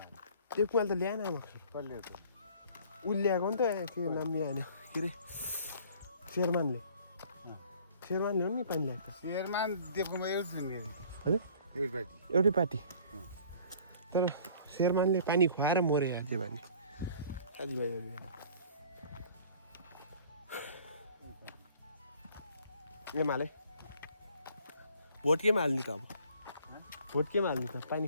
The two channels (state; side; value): inverted; both; correlation -0.52